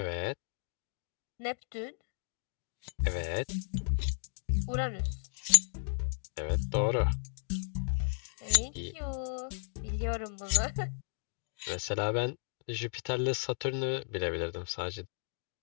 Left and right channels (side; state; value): right; silent; digital silence